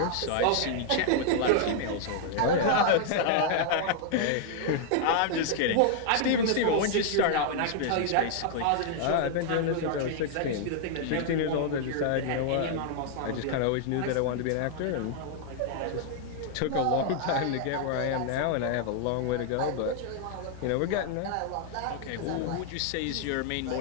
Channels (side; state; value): both; different; correlation -0.01